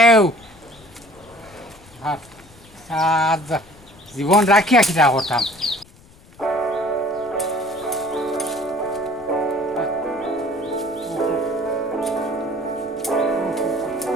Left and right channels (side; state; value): left; noise; rumble, 25 dB below the sound